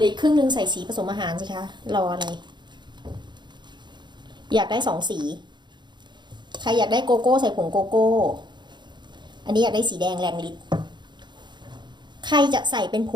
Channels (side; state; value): left; late; 0.22 ms